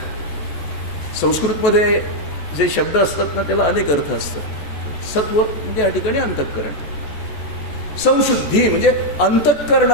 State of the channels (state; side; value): late; right; 14 ms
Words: संस्कृतमध्ये जे शब्द असतात ना त्याला अनेक अर्थ असतात. सत्व म्हणजे या ठिकाणी अंतःकरण. संशुद्धी म्हणजे